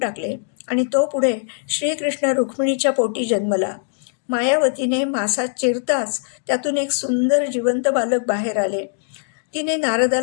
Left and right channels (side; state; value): right; silent; digital silence